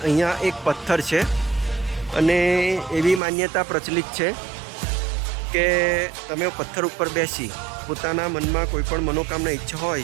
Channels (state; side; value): drops out; left; at 3.2 s